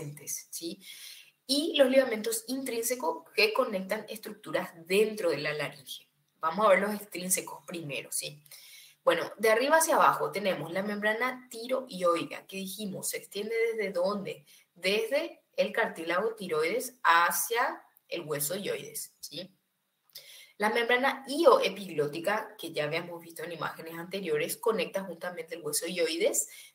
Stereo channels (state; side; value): identical; both; correlation 1.00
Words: ¿sí? Y los ligamentos intrínsecos que conectan estructuras dentro de la laringe. Vamos a ver los extrínsecos primero, ¿sí? Bueno, de arriba hacia abajo tenemos la membrana tiroidea, que dijimos, se extiende desde dónde? Desde el cartílago tiroides hacia el hueso hioides, ¿sí? La membrana ioepiglótica, que ya habíamos visto en imágenes anteriores, conecta justamente el hueso hioides